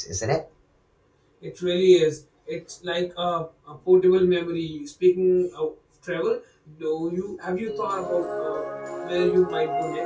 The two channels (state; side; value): identical; both; correlation 1.00